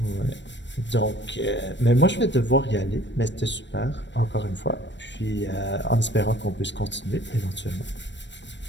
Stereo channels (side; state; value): right; late; 0.53 ms